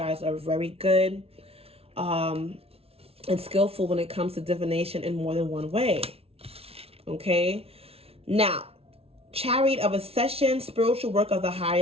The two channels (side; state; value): left; late; 0.29 ms